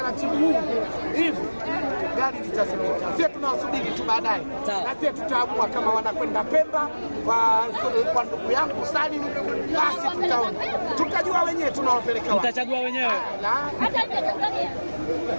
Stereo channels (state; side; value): inverted; both; correlation -1.00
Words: huu hivi gari litazimika. Sisi tunawasubiri tu baadaye, na sisi tutaamua kama wanakwenda Pemba kwa ndugu yangu Salim, basi tutaona, tutajua wenyewe tunawapeleka wapi, mtachagua wenyewe.